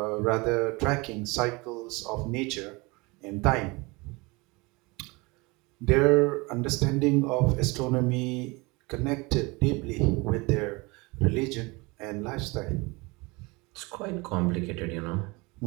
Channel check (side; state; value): left; quieter; 25.6 dB